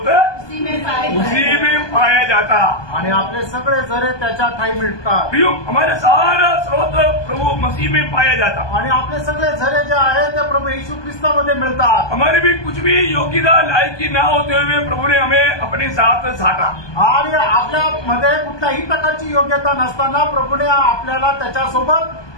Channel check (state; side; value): late; right; 1.2 ms